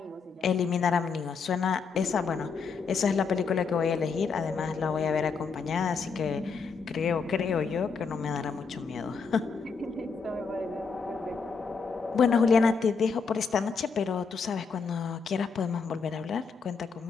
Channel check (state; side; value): quieter; right; 5.3 dB